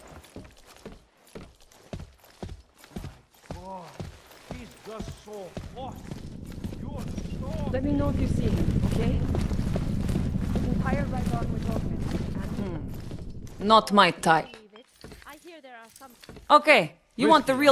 Let me know if you see him, okay? His entire right arm was augmented. Not my type. I hear there are some. Okay, you want the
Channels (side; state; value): both; identical; correlation 1.00